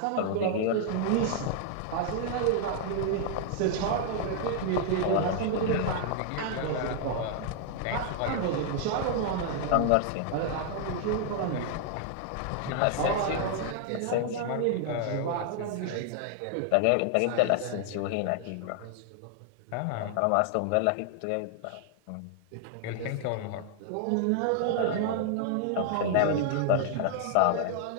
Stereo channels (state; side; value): different; both; correlation 0.00